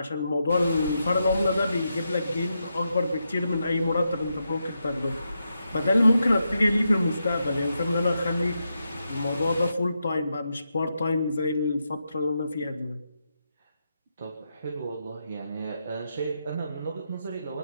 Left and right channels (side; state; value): both; inverted; correlation -0.85